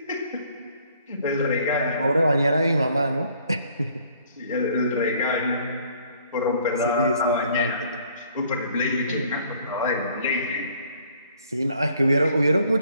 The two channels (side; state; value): both; inverted; correlation -0.60